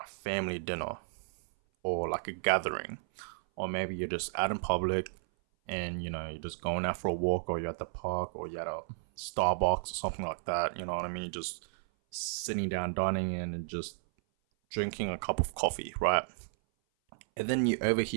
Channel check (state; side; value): silent; left; 56 dB below the other